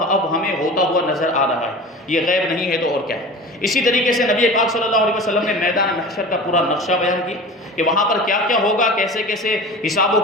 اب ہمیں ہوتا ہوا نظر آ رہا ہے۔ یہ غیب نہیں ہے تو اور کیا ہے۔ اسی طریقے سے نبی پاک صلی اللہ علیہ وسلم نے میدان محشر کا پورا نقشہ بیان کیا کہ وہاں پر کیا کیا ہوگا، کیسے کیسے حساب و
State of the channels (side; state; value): both; normal; correlation 0.35